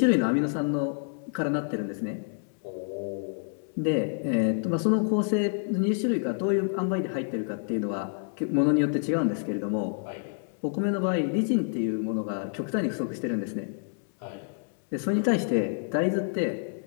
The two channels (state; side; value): silent; right; 59 dB below the other